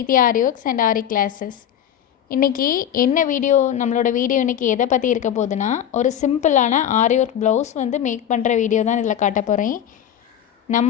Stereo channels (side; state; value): right; quieter; 9.9 dB